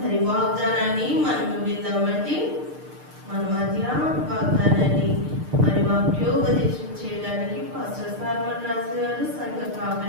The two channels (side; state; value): left; late; 6.6 ms